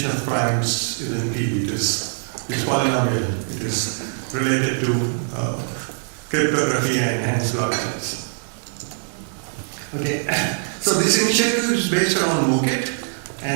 of primes isn't P, it is polynomial, it is related to cryptography and enhanced blockchains. Okay, so this initiative is based on MOOCit,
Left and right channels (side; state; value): left; silent; digital silence